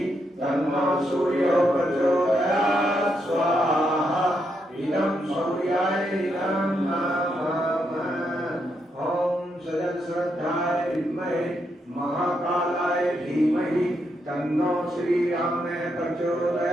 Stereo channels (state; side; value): normal; both; correlation 0.80